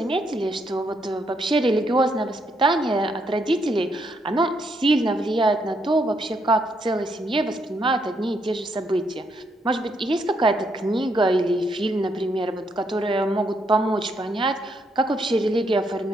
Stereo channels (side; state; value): both; normal; correlation 0.76